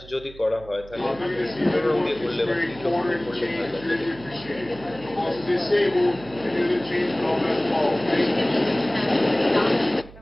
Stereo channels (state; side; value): noise; right; hum, 19 dB below the sound